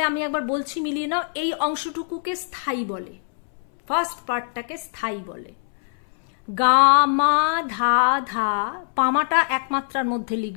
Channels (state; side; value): silent; right; 63 dB below the other